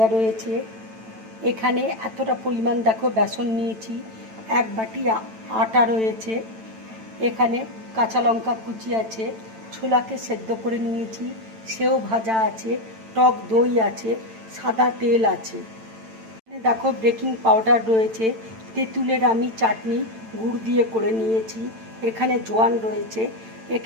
রয়েছে, এখানে এতটা পরিমাণ দেখো বেসন নিয়েছি, এক বাটি আটা রয়েছে, এখানে কাঁচা লঙ্কা কুচি আছে, ছোলাকে সেদ্ধ করে নিয়েছি, সেও ভাজা আছে, টক দই আছে, সাদা তেল আছে। দেখো, বেকিং পাউডার রয়েছে, তেঁতুলের আমি চাটনি গুড় দিয়ে করে নিয়েছি, এখানে জোয়ান রয়েছে,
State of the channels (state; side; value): late; left; 9.0 ms